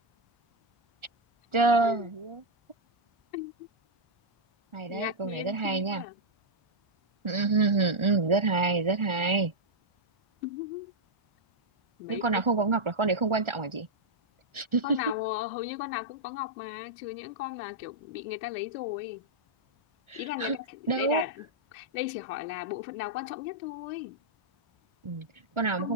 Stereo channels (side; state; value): left; late; 1.4 ms